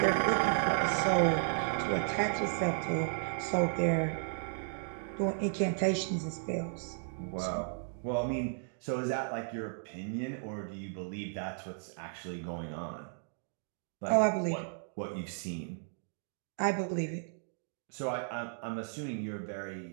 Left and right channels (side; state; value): left; silent; digital silence